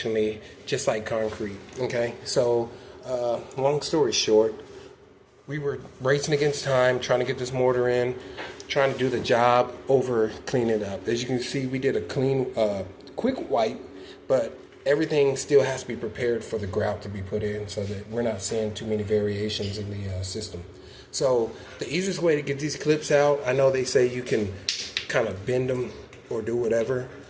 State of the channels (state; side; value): identical; both; correlation 1.00